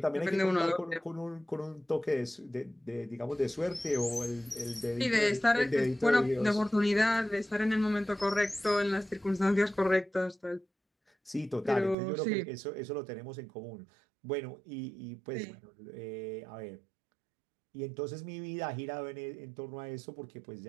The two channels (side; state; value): left; drops out; at 12.0 s